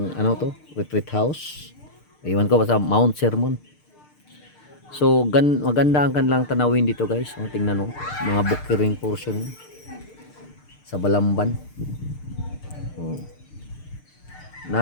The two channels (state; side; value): late; right; 6.6 ms